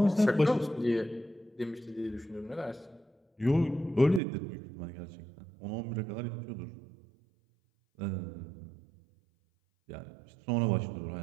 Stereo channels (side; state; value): left; drops out; at 4.2 s